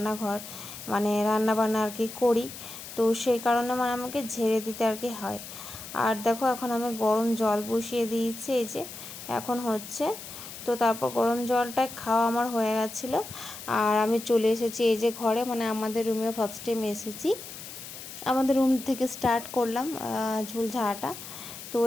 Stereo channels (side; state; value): left; noise; hiss, 12 dB below the sound